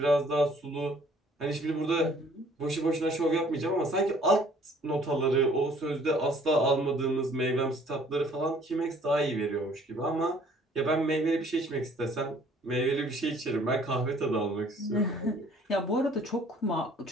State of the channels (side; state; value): both; normal; correlation 0.57